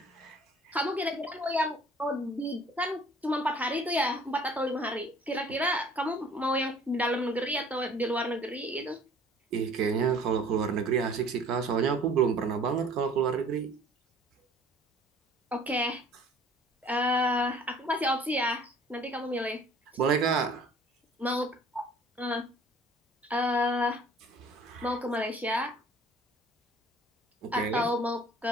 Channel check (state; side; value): normal; both; correlation 0.52